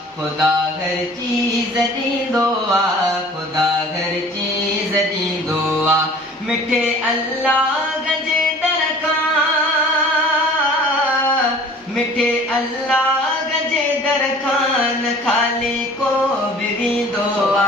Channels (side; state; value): both; normal; correlation 0.47